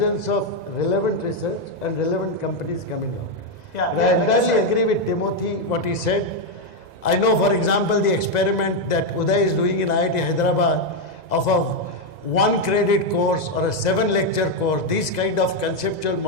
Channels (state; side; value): late; right; 2.0 ms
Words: of relevant research and relevant companies coming out. Yeah, and I like entirely said, agree with Timothy, what he said. I know, for example, the experiment that Uday is doing in IIT Hyderabad of a 1 credit course or a 7 lecture course. These kind of conceptual